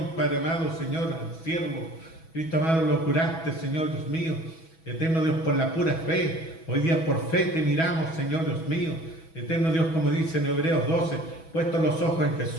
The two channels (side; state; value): right; late; 6.1 ms